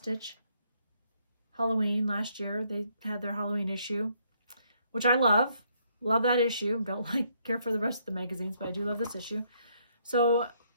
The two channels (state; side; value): inverted; both; correlation -0.70